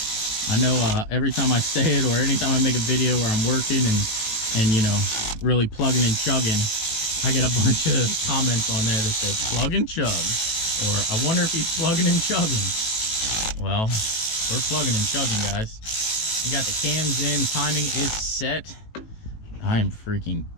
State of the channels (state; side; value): late; right; 18 ms